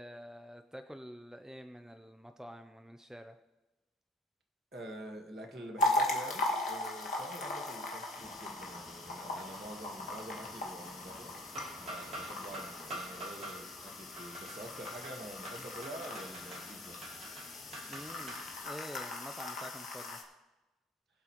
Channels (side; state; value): both; normal; correlation 0.47